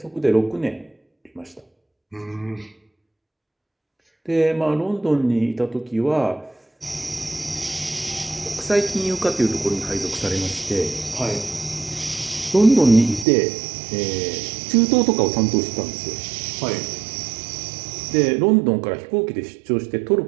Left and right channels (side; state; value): left; drops out; at 13.2 s